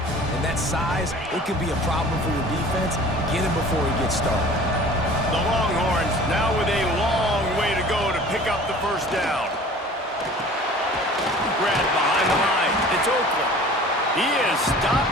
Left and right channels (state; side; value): normal; both; correlation 0.45